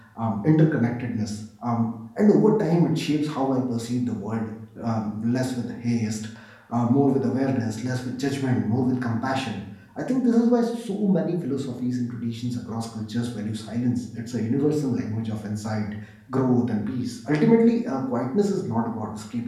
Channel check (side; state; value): both; identical; correlation 1.00